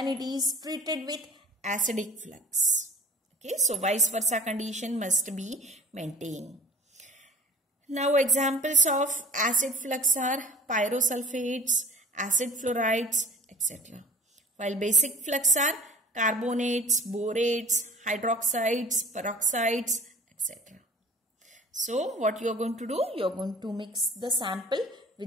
it is treated with acidic flux. Okay, so vice versa condition must be maintained. Now examples of acid flux are pyrosulfates, acid fluorides, etc. While basic flux are carbonates, borates, hydroxides, peroxides, etc. So what you are going to do? You are going to mix the sample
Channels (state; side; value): normal; both; correlation 0.45